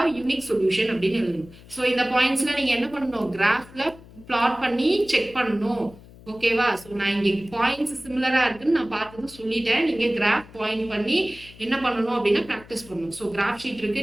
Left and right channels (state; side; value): noise; left; hum, 21 dB below the sound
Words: unique solution அப்படினு எழுதணும். so இந்த பாயிண்ட்ஸ்ல நீங்க என்ன பண்ணனும் கிராஃப்ல பிளாட் பண்ணி செக் பண்ணனும். ஓகேவா? ஸோ நான் இங்கே பாயிண்ட்ஸ் சிமிலரா இருக்குன்னு நான் பார்த்தது சொல்லிட்டேன். நீங்க கிராஃப் பாயிண்ட் பண்ணி என்ன பண்ணணும் அப்படின்னா ப்ராக்டிஸ் பண்ணணும். ஸோ கிராஃப் ஷீட்